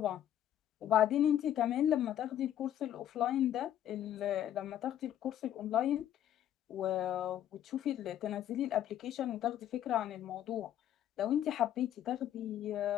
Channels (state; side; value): quieter; right; 11.2 dB